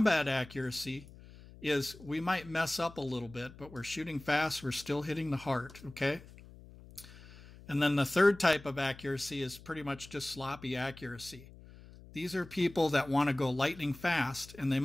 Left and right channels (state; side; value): noise; left; hum, 19 dB below the sound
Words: accuracy is we might mess up a little bit, but we're shooting fast, we're still hitting the heart, okay? And then the third type of accuracy is pretty much just sloppy accuracy. These are people that want to go lightning fast, and they